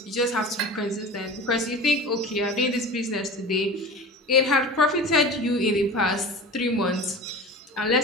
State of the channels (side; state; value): both; normal; correlation 0.34